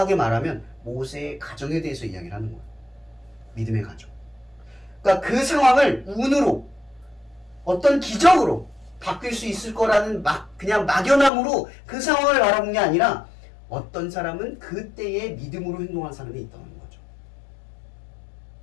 말하면 모세의 가정에 대해서 이야기를 하는 거예요. 믿음의 가정. 그러니까 그 상황을 운으로 어떤 기적으로 바뀔 수 있을 거라는 그냥 막연함으로 그 상황을 바라본 게 아니라 어떤 사람은 그때에 믿음으로 행동한 사람이 있다는 거죠.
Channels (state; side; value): drops out; right; at 11.3 s